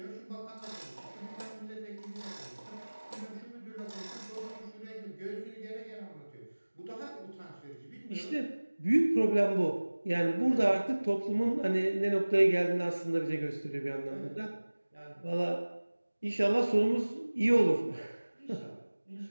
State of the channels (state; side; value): inverted; both; correlation -1.00